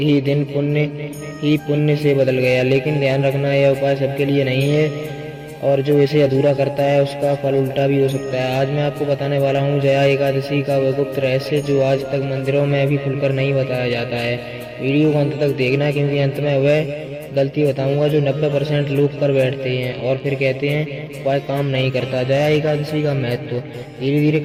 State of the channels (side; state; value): both; identical; correlation 1.00